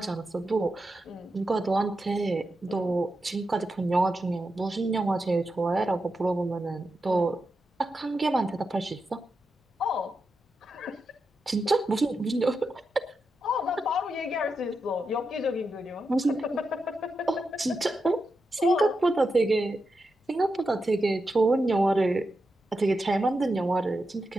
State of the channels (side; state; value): both; normal; correlation 0.88